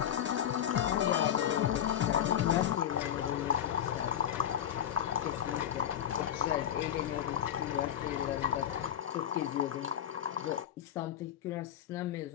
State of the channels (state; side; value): quieter; right; 10.1 dB